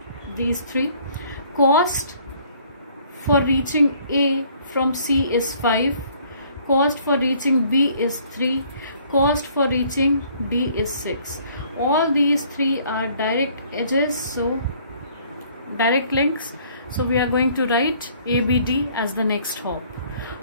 these 3. Cost for reaching A from C is 5. Cost for reaching B is 3. Cost for reaching D is 6. All these 3 are direct edges, so direct links. So we are going to write ABD as the next hop.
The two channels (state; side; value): inverted; both; correlation -0.60